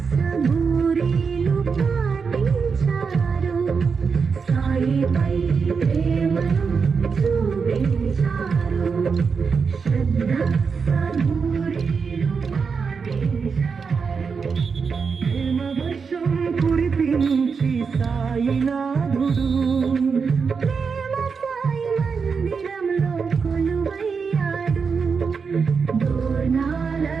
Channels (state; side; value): quieter; left; 5.5 dB